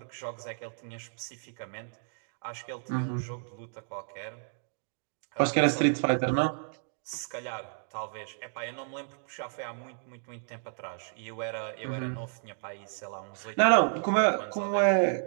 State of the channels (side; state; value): left; silent; digital silence